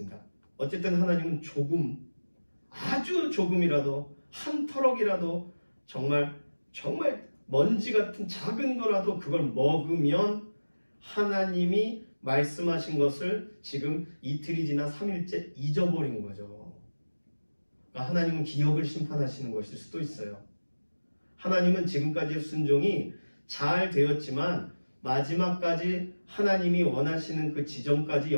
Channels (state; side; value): inverted; both; correlation -1.00